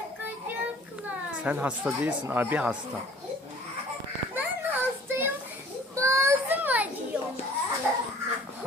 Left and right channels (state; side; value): normal; both; correlation 0.51